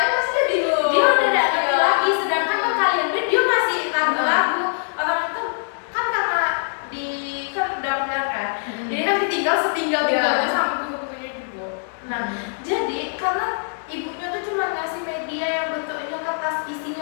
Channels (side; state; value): right; silent; 64 dB below the other